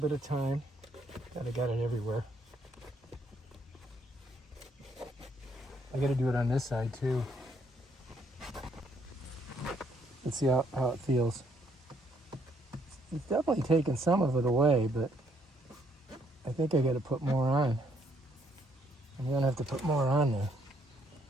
of time. God, I got it everywhere. I got to do it on this side too. Let's see how it feels. It's definitely taken some of it away, but I think I got to put more on. I'm going to have to put more on there.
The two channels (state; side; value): normal; both; correlation 0.70